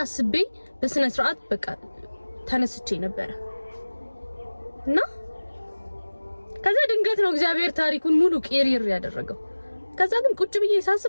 አስቤ በስነ ስርዓት በቃ ተነስቼ ነበር እና ከዛ ድንገት ነው እግዚአብሔር ታሪኩን ሙሉ ቄሪር ያደረገው። ከዛ ግን ቁጭ ብዬ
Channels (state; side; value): inverted; both; correlation -1.00